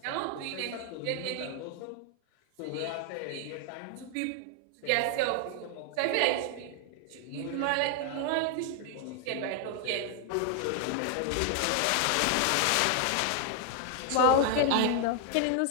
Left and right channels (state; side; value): different; both; correlation 0.00